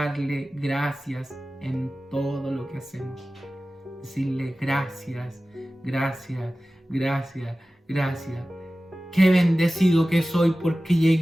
gracias en todo lo que hacemos. Decirle gracias, gracias, gracias, gracias. Qué bendecido que soy porque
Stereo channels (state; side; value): normal; both; correlation 0.96